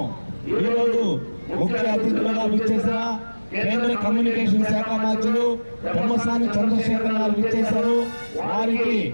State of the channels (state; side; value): inverted; both; correlation -1.00